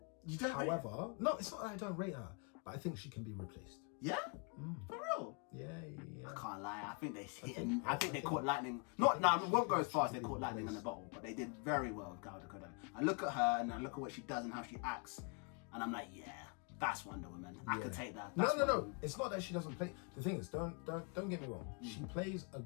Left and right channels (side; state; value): right; quieter; 35.3 dB